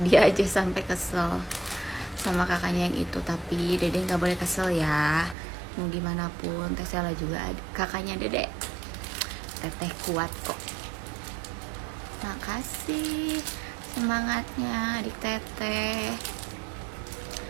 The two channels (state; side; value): drops out; left; at 5.4 s